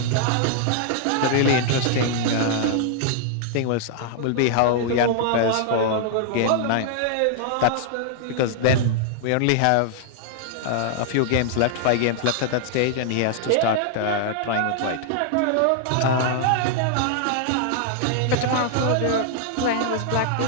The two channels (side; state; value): both; different; correlation -0.01